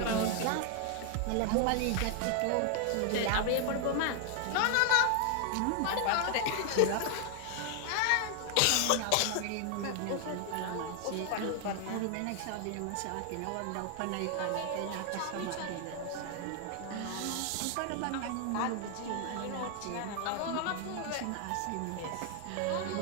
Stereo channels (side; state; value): both; different; correlation 0.00